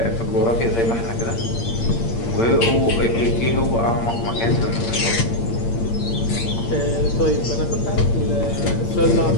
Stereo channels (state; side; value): late; right; 8.7 ms